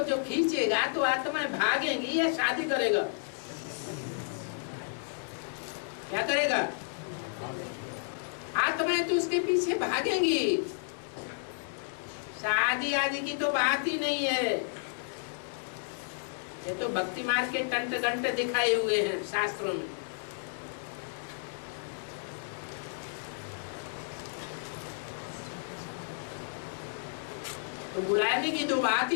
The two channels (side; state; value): right; silent; 56 dB below the other